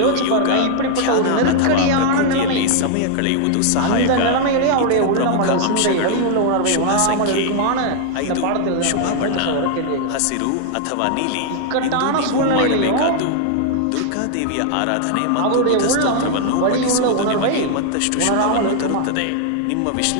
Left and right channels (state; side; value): different; both; correlation 0.00